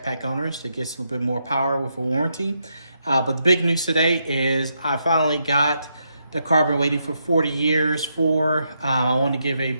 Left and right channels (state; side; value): inverted; both; correlation -0.80